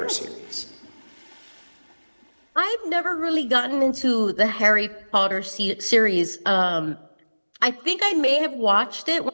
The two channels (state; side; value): inverted; both; correlation -1.00